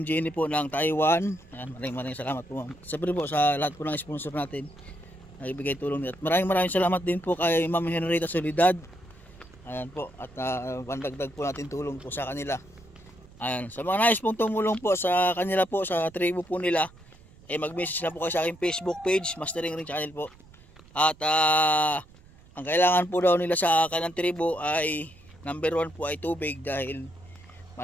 Jenny po ng Taiwan. Ayan, maraming salamat po ma'am. Siyempre po sa lahat po ng sponsor natin na ibigay tulong nila. At maraming salamat din po kay Ma'am Henrietta Solidad. Ayan po, at pandagdag po natin tulong po sa kanila. Ayan, sa mga nais pong tumulong po sa kanila po, sa tribo po nila, mag-message na po kayo sa aking Facebook page, Mastering Ring Channel po. At ang kailangan po daw nila sa kanilang tribo ay number 1 po ay tubig, dahil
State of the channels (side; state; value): right; noise; rumble, 24 dB below the sound